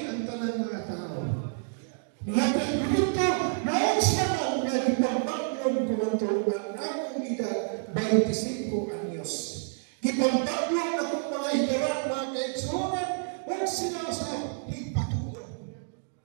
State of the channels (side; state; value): left; silent; digital silence